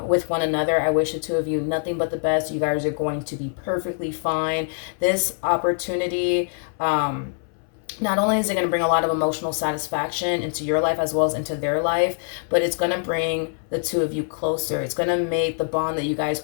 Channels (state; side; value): silent; right; 63 dB below the other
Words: with one another. I wish the two of you nothing but the best. You guys are going to be perfectly fine. This opportunity, not only is it going to bring a lot of emotional satisfaction into your life as well as into their life, but it's going to bring the two of you closer. It's going to make the bond that you guys